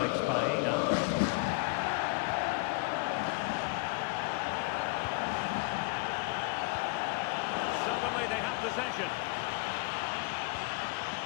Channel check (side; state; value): right; quieter; 26.2 dB